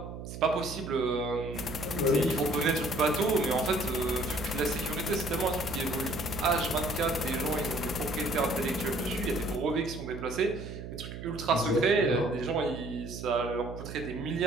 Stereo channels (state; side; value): noise; right; hum, 9 dB below the sound